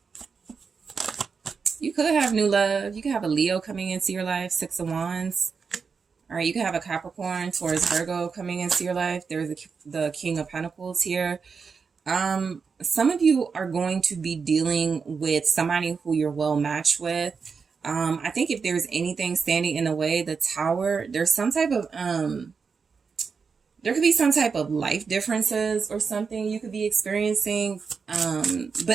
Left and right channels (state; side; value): quieter; left; 5.4 dB